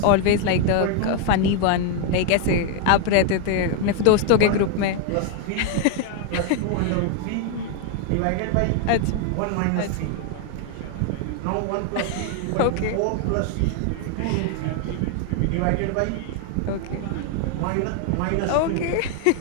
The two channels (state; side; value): different; both; correlation 0.00